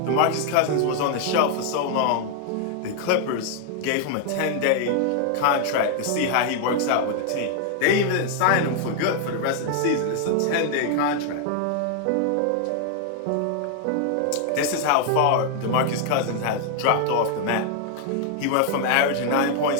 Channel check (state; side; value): different; both; correlation 0.00